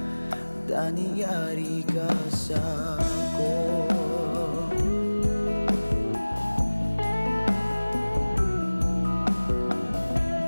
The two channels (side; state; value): both; inverted; correlation -1.00